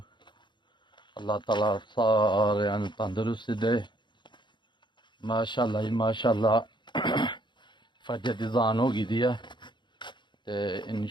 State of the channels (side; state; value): right; late; 0.22 ms